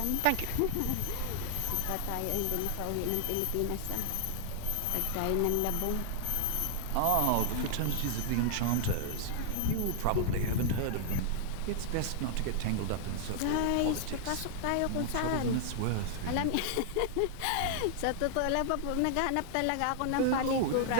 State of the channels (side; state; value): both; different; correlation -0.01